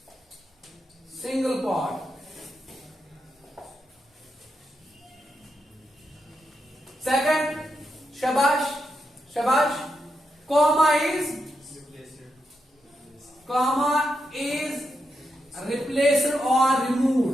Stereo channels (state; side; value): normal; both; correlation 0.85